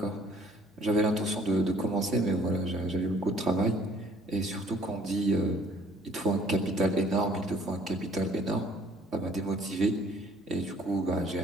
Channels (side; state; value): both; normal; correlation 0.57